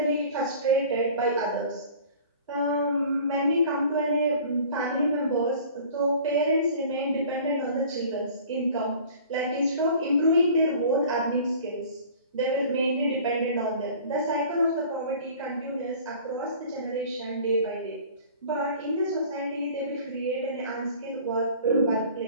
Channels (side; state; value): both; inverted; correlation -0.46